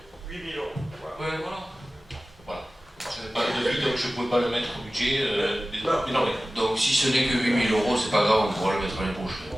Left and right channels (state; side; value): normal; both; correlation 0.96